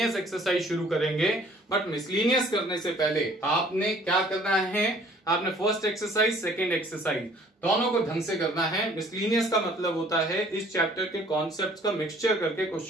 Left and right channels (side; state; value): both; normal; correlation 0.56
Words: एक्सरसाइज शुरू करेंगे, बट मिसलीनियस करने से पहले आपने क्या करना है? आपने फर्स्ट एक्सरसाइज, सेकंड एक्सरसाइज दोनों को ढंग से करना है। मिसलीनियस का मतलब होता है इस चैप्टर के कॉन्सेप्ट्स का मिक्सचर करके